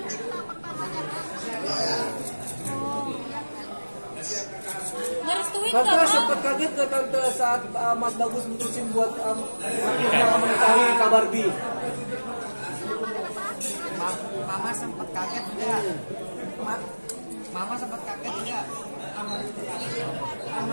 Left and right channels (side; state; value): both; inverted; correlation -1.00